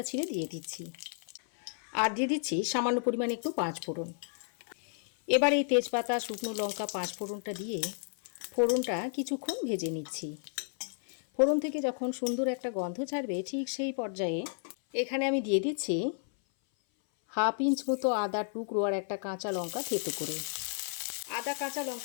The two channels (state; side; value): silent; right; 56 dB below the other